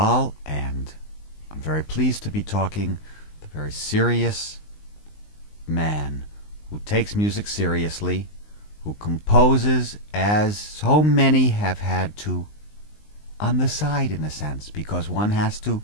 and I'm very pleased to be talking to a very serious man who takes music seriously, who composes as so many have had to on the side, in a sense, because one has to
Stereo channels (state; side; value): late; right; 19 ms